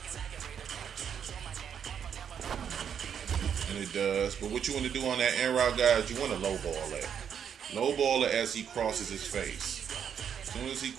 And it does. But what you want to do on that in route, guys, you want to lowball that. Lowball it as he crosses his face. As soon as he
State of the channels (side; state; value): left; quieter; 8.1 dB